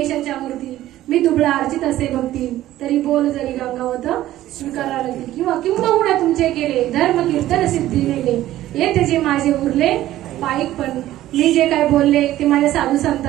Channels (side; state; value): left; quieter; 14.3 dB